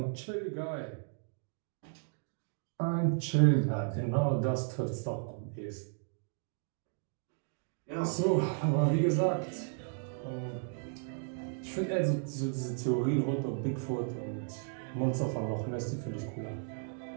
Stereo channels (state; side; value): silent; left; 55 dB below the other